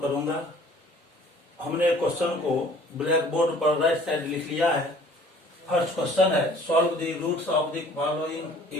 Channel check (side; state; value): both; normal; correlation 0.52